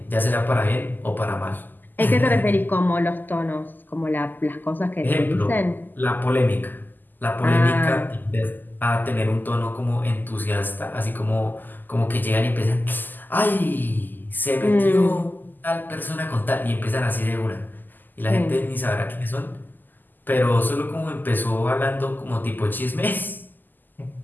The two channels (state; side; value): late; right; 0.088 ms